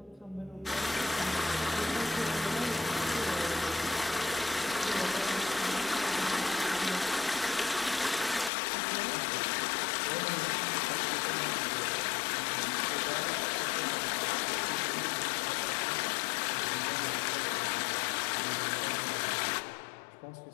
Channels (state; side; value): drops out; right; at 8.5 s